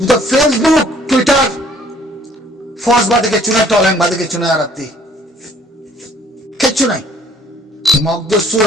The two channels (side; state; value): both; normal; correlation 0.59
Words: ফেসবুক টুইটার ফস বাদে কিছু নাই তলাই বাদে কিছু নাই আরাতি কিচ্ছু নাই মগদ